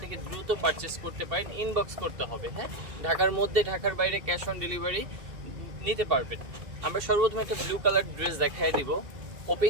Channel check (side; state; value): left; late; 2.7 ms